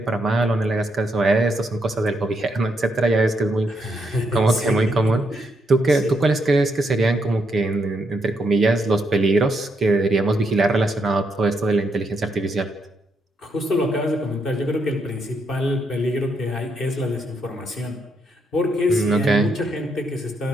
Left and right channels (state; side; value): normal; both; correlation 0.78